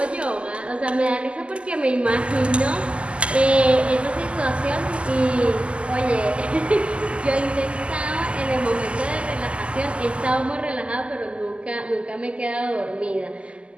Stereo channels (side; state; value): left; late; 0.055 ms